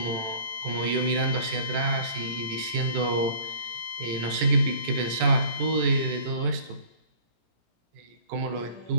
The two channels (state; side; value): late; left; 18 ms